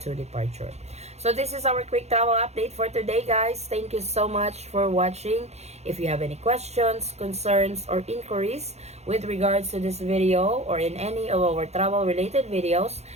departure. So this is our quick travel update for today, guys. Thank you so much for watching. If you have any questions, concerns, or inquiries with regards to this video or in any of our travel related videos,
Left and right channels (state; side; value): late; left; 0.31 ms